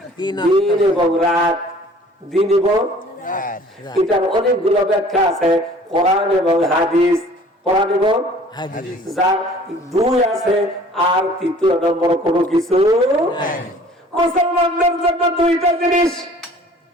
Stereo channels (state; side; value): normal; both; correlation 0.51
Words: তিন দিন এবং রাত, দিন এবং এটার অনেকগুলো ব্যাখ্যা আছে, কোরআন এবং হাদিস। কোরআন এবং হাদিস। যার দুই আছে আর তৃতীয় নম্বর কোনো কিছু নাই। মুসলমানদের জন্য দুইটা জিনিস।